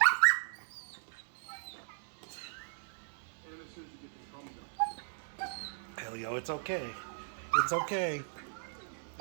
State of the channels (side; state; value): left; silent; digital silence